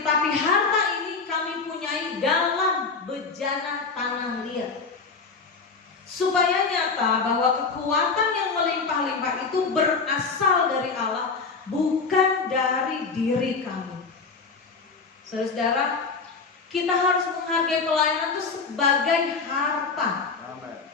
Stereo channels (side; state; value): right; quieter; 4.7 dB